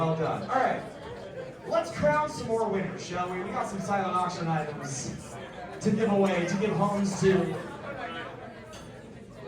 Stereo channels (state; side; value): identical; both; correlation 1.00